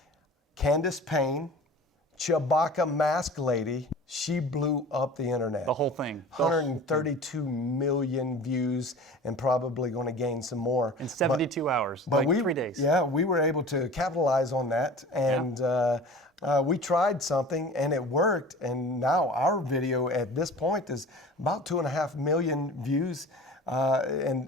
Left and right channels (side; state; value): both; normal; correlation 0.40